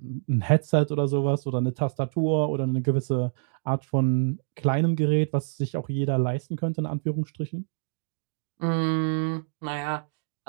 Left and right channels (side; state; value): left; silent; digital silence